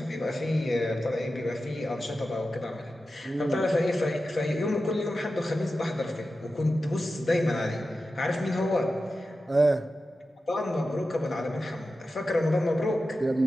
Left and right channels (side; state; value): both; normal; correlation 0.92